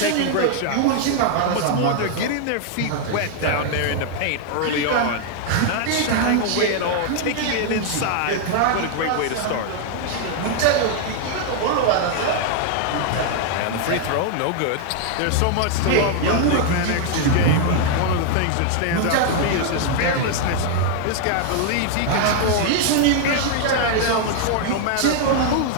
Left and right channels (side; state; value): both; different; correlation 0.00